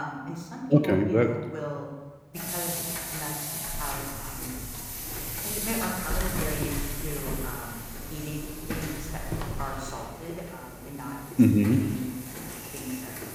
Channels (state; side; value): identical; both; correlation 1.00